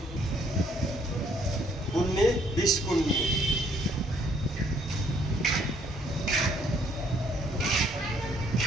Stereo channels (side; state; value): both; normal; correlation 0.65